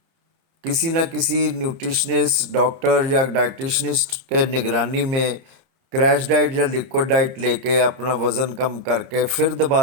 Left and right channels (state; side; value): late; left; 30 ms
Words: किसी न किसी न्यूट्रिशनिस्ट, डॉक्टर या डाइटिशनिस्ट के निगरानी में क्रैश डाइट या लिक्विड डाइट लेके अपना वज़न कम करके फिर